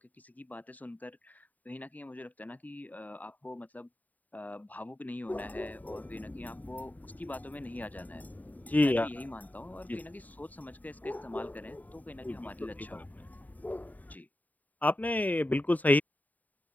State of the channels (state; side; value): late; right; 0.078 ms